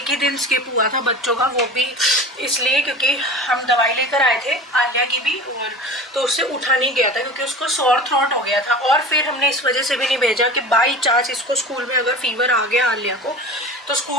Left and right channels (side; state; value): both; normal; correlation 0.35